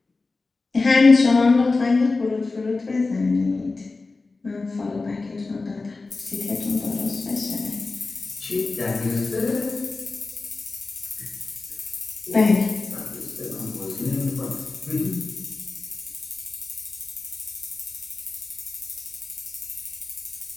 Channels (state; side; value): quieter; right; 3.7 dB